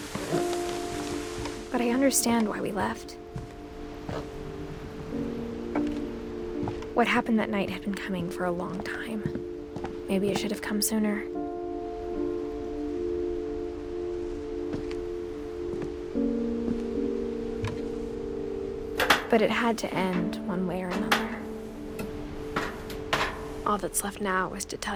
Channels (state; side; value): identical; both; correlation 1.00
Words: But I understand why we left. What happened that night had been coming for a long time. Maybe it should have come sooner. But it had to end one way or another. All that's left now is to